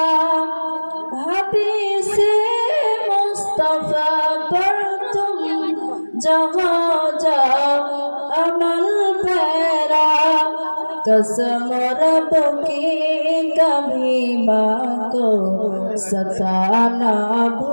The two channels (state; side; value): inverted; both; correlation -1.00